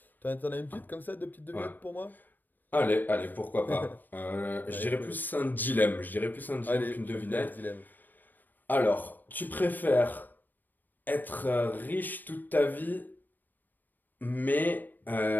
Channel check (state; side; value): late; right; 0.090 ms